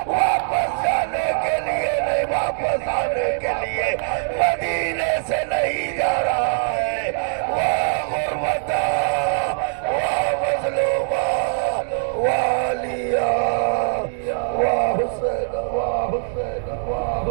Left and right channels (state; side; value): silent; left; digital silence